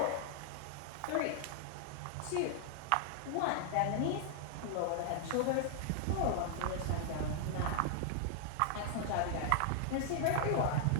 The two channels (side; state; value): both; different; correlation -0.01